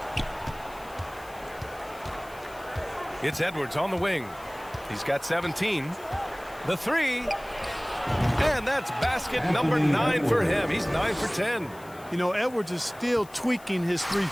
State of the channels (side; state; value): left; noise; hiss, 23 dB below the sound